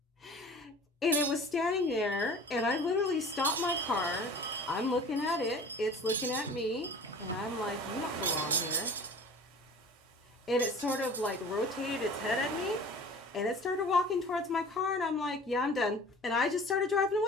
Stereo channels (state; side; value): normal; both; correlation 0.43